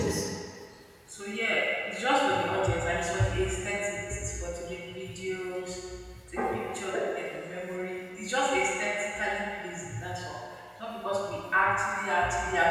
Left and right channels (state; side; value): identical; both; correlation 1.00